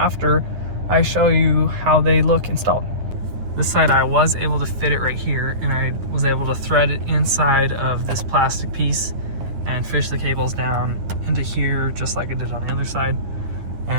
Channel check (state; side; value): late; left; 9.7 ms